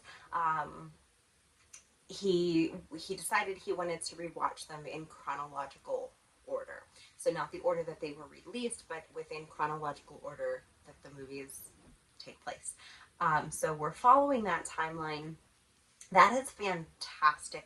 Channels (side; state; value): both; identical; correlation 1.00